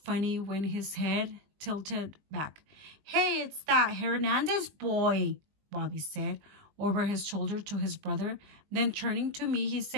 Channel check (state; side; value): late; left; 20 ms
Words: when his head tilted back. Hey, it's that Hernandez boy, Bobby said over his shoulder to his brother. Then turning to me, he